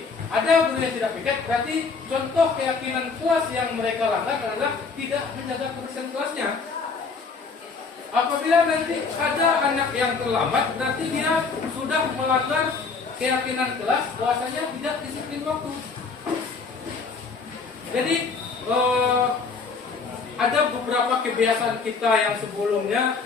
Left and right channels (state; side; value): quieter; right; 4.7 dB